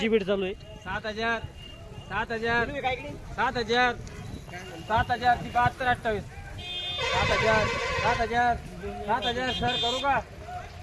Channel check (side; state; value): both; identical; correlation 1.00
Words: बीड चालू आहे। 7000 ती 72 28 7000 सर करू का